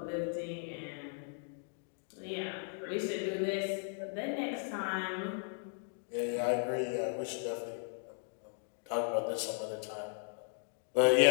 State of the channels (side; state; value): right; silent; 54 dB below the other